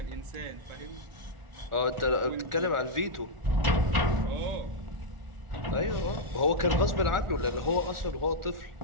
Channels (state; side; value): late; left; 1.4 ms